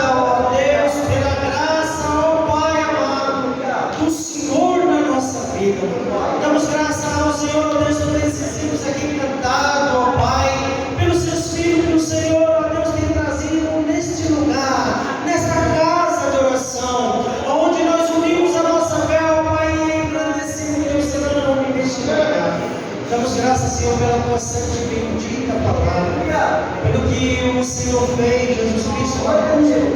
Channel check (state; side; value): identical; both; correlation 1.00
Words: ó Deus, pela graça, ó Pai amado, do Senhor na nossa vida. Damos graças ao Senhor, ó Deus, por esses hinos aqui cantados, ó Pai, pelos seus filhos que o Senhor, ó Deus, tem trazido neste lugar, nesta casa de oração, onde nós unimos a nossa fé, ó Pai, e engrandecemos o teu santo nome neste lugar. Damos graças, Senhor, pela tua santa e bendita palavra, pelo que o Senhor fez, Jesus Cristo, na cruz do